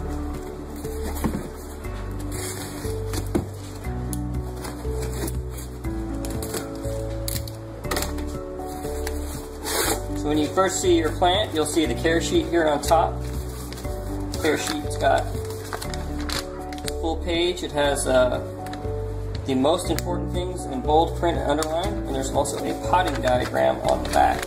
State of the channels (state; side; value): identical; both; correlation 1.00